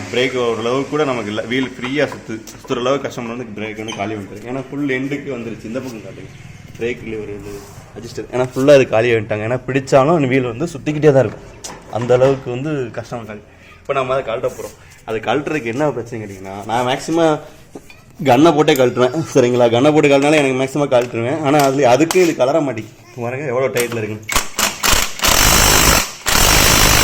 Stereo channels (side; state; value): both; identical; correlation 1.00